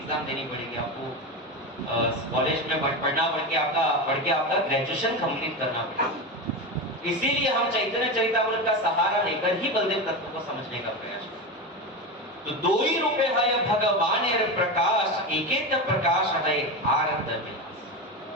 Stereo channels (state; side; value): normal; both; correlation 0.20